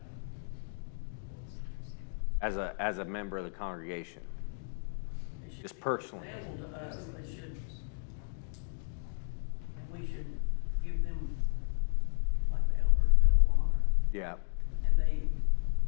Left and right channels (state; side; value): silent; right; digital silence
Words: as a member of the congregation? They should Just be personally. example to us, they should, and we should give them, like the elders, double honor, Yeah. and they,